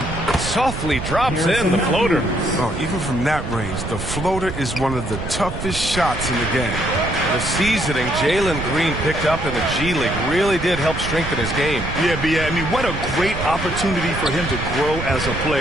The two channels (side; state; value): right; noise; rumble, 7 dB below the sound